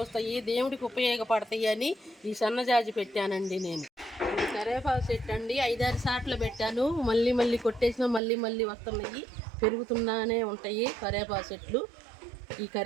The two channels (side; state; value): left; drops out; at 8.2 s